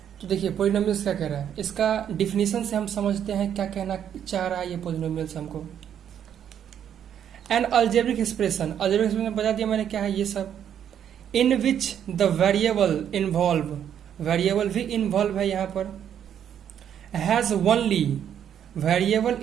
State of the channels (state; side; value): quieter; left; 9.3 dB